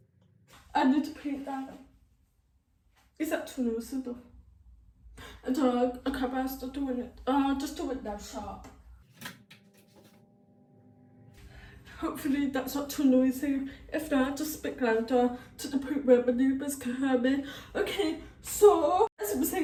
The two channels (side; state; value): both; identical; correlation 1.00